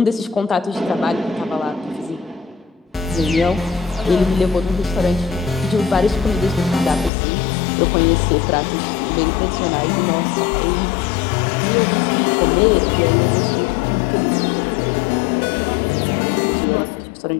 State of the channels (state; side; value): drops out; right; at 7.1 s